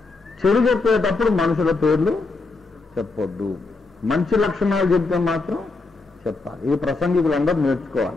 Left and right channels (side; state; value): right; quieter; 3.7 dB